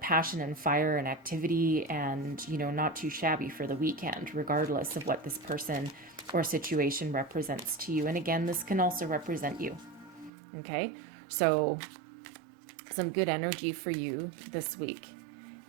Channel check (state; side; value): drops out; left; at 10.3 s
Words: passion and fire and activity and, you know, not too shabby for the weekend, regardless of what this person or situation represents to you. And again, this can also represent you. Okay, so some good energy for you this week.